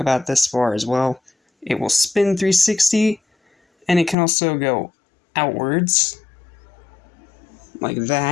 this far as well. It will spin 360, and it can also go outwards like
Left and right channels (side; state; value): right; drops out; at 4.2 s